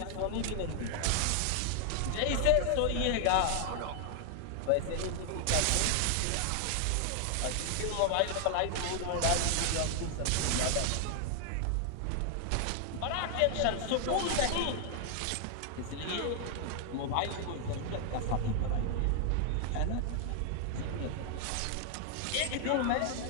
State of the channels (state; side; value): different; both; correlation 0.00